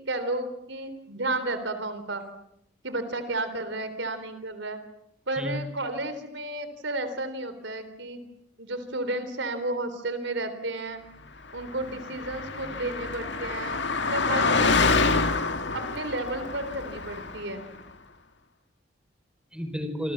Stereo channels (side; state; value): both; normal; correlation -0.04